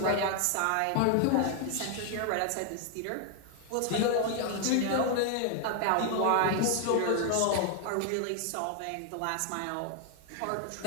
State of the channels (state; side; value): different; both; correlation 0.00